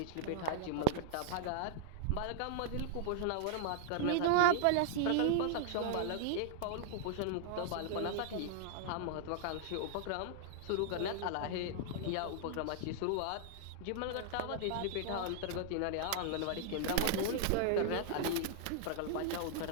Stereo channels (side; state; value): both; different; correlation -0.01